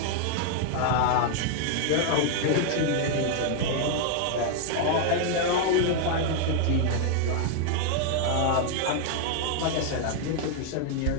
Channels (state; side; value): different; both; correlation 0.00